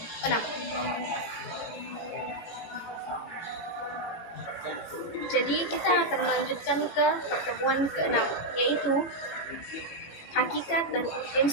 Jadi kita akan melanjutkan ke pertemuan ke-6, yaitu hakikat dan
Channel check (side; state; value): right; late; 18 ms